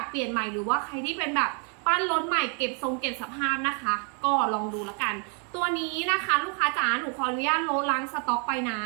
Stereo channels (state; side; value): quieter; left; 39.4 dB